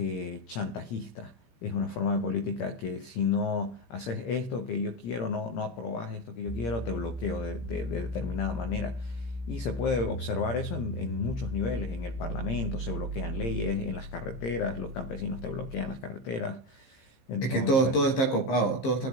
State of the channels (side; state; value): right; late; 15 ms